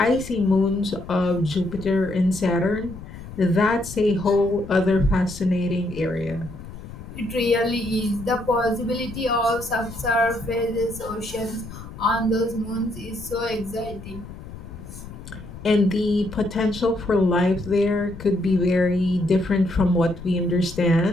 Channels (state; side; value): noise; left; rumble, 14 dB below the sound